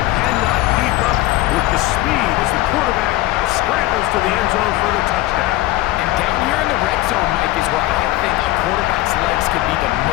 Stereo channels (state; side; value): quieter; right; 17.3 dB